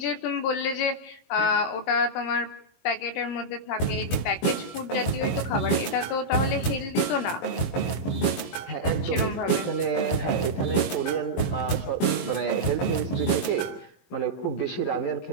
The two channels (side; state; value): right; late; 22 ms